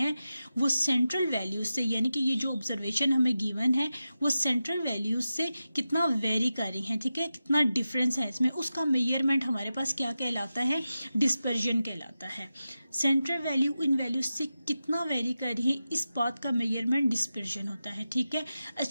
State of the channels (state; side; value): inverted; both; correlation -0.92